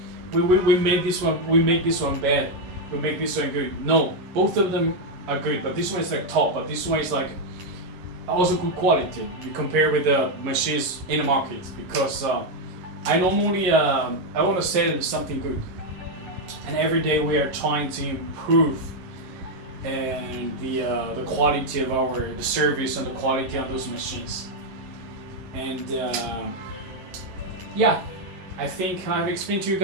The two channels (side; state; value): left; late; 11 ms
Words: we make this one bad. We make this one good. No, both of them are good, but this one is like top, but this one is like also good quality. You compare with the machines in the market, because I normally I want to sell something good, and every day we are trying to improve and the quality of the service and the quality on those machines. And yeah, I think I've explained to you